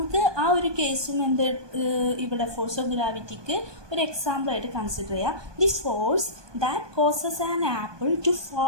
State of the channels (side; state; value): left; late; 1.2 ms